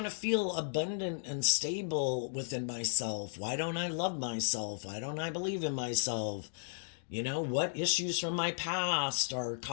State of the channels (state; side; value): silent; right; digital silence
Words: to feel abundant and stable within myself. Why don't I love myself? Why don't I believe in myself? What issues from my past are